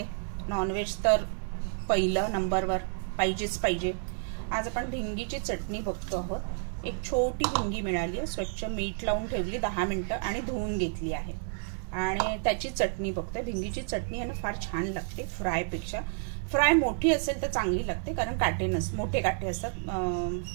नॉनव्हेज तर पहिलं नंबरवर पाहिजेच पाहिजे. आज आपण भिंगीची चटणी बघतो आहोत. एक छोटी भिंगी मिळाली आहे, स्वच्छ मीठ लावून ठेवली 10 मिनिटं आणि धुवून घेतली आहे आणि त्याची चटणी बघतोय. भिंगीची चटणी आहे ना फार छान लागते फ्रायपेक्षा. फ्राय मोठी असेल तर चांगली लागते कारण काटे मोठे काटे असतात,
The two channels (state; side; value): silent; left; 57 dB below the other